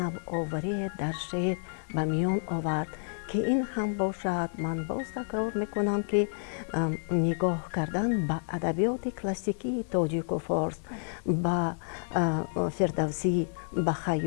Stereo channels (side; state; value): right; silent; digital silence